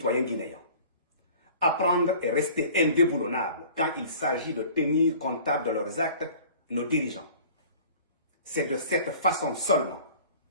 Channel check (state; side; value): inverted; both; correlation -0.46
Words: guinéens, apprendre et rester indéboulonnables quand il s'agit de tenir comptable de leurs actes nos dirigeants. C'est de cette façon seulement